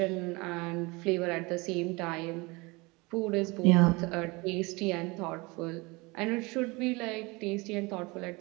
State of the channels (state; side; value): quieter; left; 25.1 dB